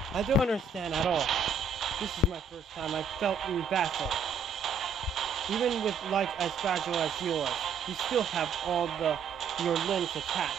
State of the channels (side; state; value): left; quieter; 5.2 dB